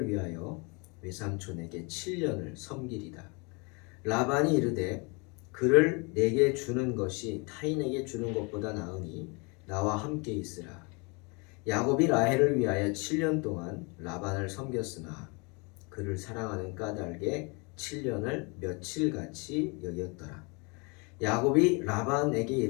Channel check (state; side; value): quieter; right; 30.7 dB